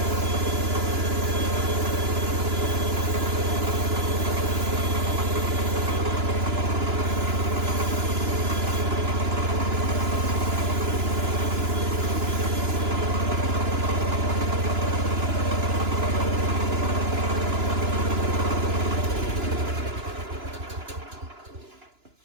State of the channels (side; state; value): left; late; 2.9 ms